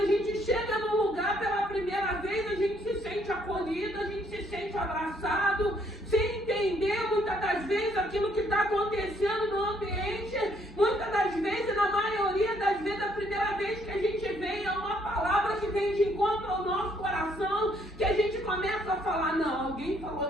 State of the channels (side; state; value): both; normal; correlation 0.68